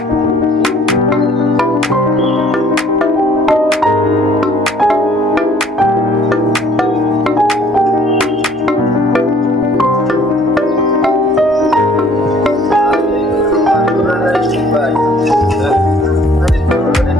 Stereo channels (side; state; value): both; normal; correlation 0.57